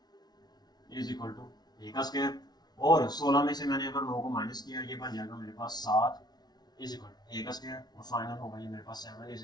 इज इक्वल टू ए का स्क्वायर। और 16 में से मैंने अगर 9 को माइनस किया, ये बन जाएगा मेरे पास 7 इज इक्वल टू ए का स्क्वायर। और फाइनल होगा ये मेरे पास 7 इज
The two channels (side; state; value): right; late; 0.19 ms